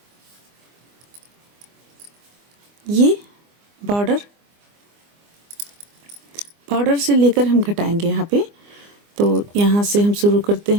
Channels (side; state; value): left; late; 24 ms